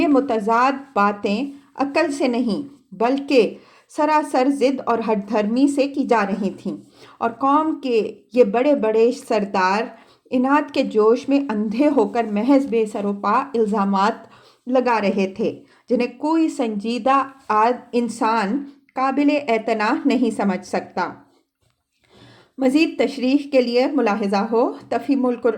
متضاد باتیں عقل سے نہیں بلکہ سراسر ضد اور ہٹ دھرمی سے کی جا رہی تھیں، اور قوم کے یہ بڑے بڑے سردار اناد کے جوش میں اندھے ہو کر محض بے سر و پا الزامات لگا رہے تھے جنہیں کوئی سنجیدہ انسان قابل اعتناء نہیں سمجھ سکتا۔ مزید تشریح کے لیے ملاحظہ ہو تفہیم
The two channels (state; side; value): identical; both; correlation 1.00